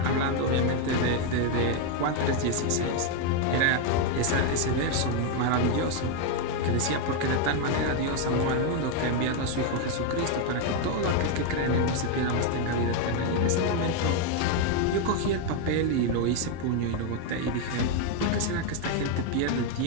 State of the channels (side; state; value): both; different; correlation 0.01